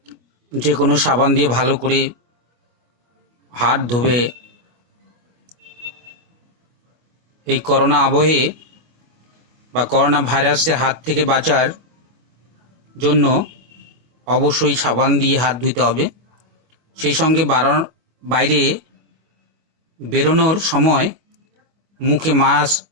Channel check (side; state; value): left; late; 25 ms